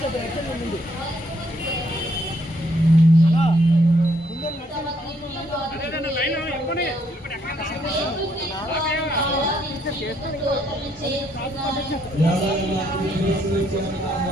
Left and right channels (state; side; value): normal; both; correlation 0.70